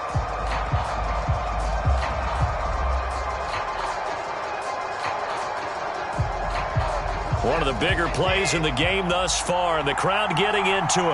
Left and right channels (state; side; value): identical; both; correlation 1.00